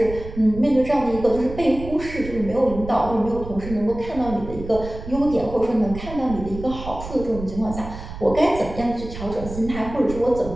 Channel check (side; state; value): right; noise; rumble, 11 dB below the sound